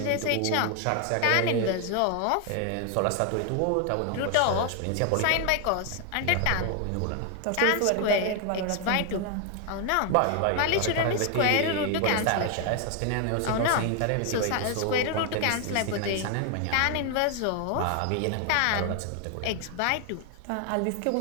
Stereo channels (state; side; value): different; both; correlation 0.01